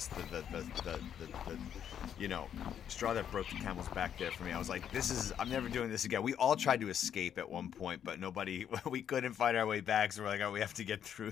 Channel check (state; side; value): quieter; right; 9.1 dB